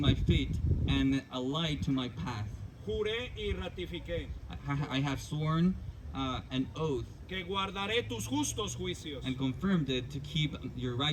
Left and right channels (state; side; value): identical; both; correlation 1.00